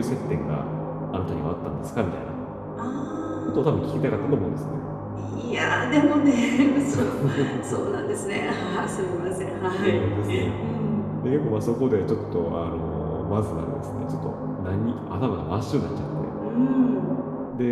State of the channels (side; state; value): both; identical; correlation 1.00